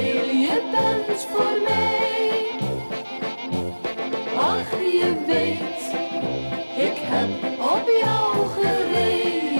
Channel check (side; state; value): both; inverted; correlation -1.00